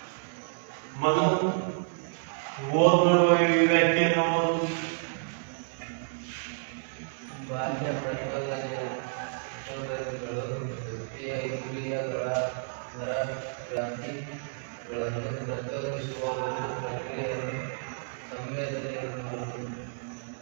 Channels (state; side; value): silent; left; 58 dB below the other